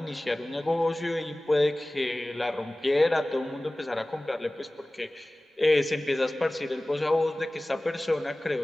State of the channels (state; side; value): normal; both; correlation 0.98